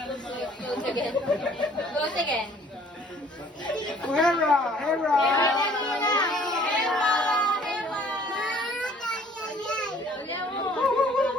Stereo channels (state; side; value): normal; both; correlation 0.57